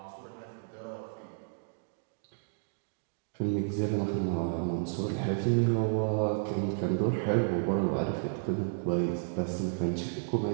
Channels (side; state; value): left; silent; digital silence